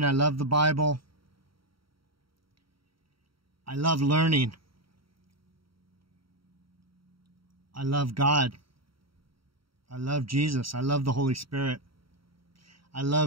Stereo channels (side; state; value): left; late; 0.74 ms